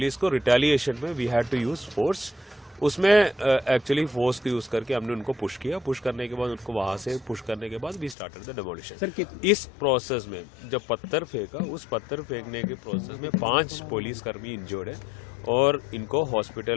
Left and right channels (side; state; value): right; drops out; at 8.2 s